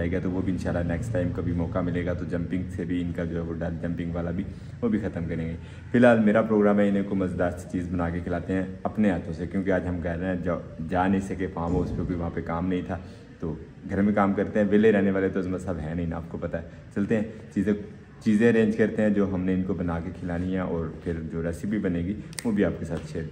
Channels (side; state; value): both; identical; correlation 1.00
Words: गया, तो वो भी इंशाल्लाह नेक्स्ट टाइम कभी मौका मिलेगा तो जंपिंग से भी इनका जो है वो डर, जंपिंग वाला भी वो भी ख़त्म करेंगे। फिलहाल मेरा प्रोग्राम है इन्हें को मज़ेदार सी चीज़ बना के खिलाते हैं अपने हाथों से, क्योंकि आज हम कह रहे हैं जा नहीं सके फार्म हाउस पर, कोई वहाँ पर काम नहीं था, तो घर में काम करते हैं। विले रहने वाले तो सब है नहीं ना, आपको पता है। चलते हैं चीज़ें अरेंज करते हैं जो हमने इनको बना के खिलानी है, और फिर जो रेसिपी बनेगी वो भी आपके साथ शेयर